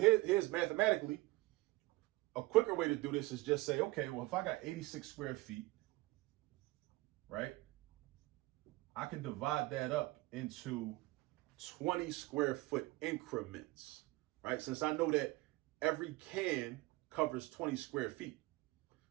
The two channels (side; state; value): left; quieter; 21.0 dB